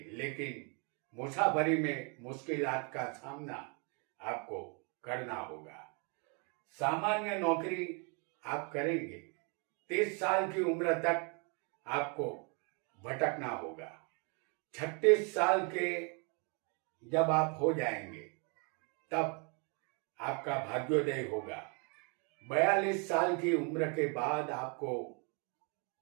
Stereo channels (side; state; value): left; quieter; 35.3 dB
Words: लेकिन मुसाफरी में मुश्किलात का सामना आपको करना होगा। सामान्य नौकरी आप करेंगे। 30 साल की उम्र तक आपको भटकना होगा। 36 साल के जब आप हो जाएंगे तब आपका भाग्योदय होगा। 42 साल की उम्र के बाद आपको